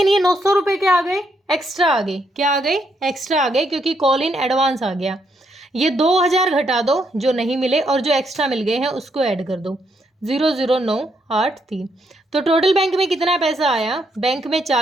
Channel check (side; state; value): both; normal; correlation 0.76